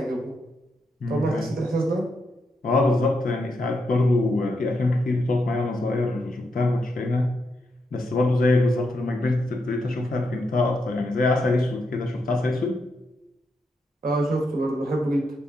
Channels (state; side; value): normal; both; correlation 0.82